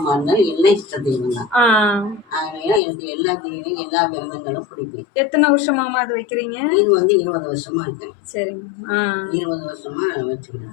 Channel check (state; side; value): drops out; right; at 2.8 s